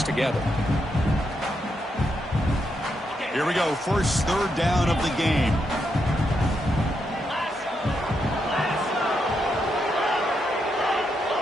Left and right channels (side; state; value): both; normal; correlation 0.81